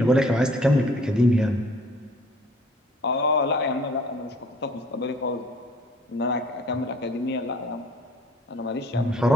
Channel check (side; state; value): both; normal; correlation 0.55